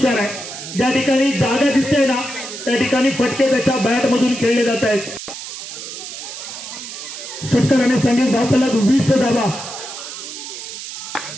आहे. ज्या ठिकाणी जागा दिसते ना त्या ठिकाणी फटके त्याच्या बॅट मधून खेळले जात आहेत. षटकाराने संगीत धावफलक 20 धावा.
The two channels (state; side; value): noise; right; hiss, 10 dB below the sound